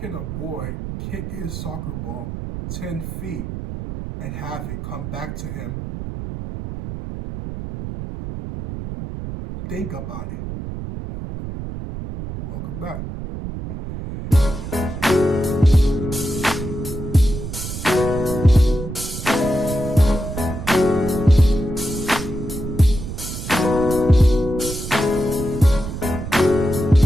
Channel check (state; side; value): noise; right; rumble, 7 dB below the sound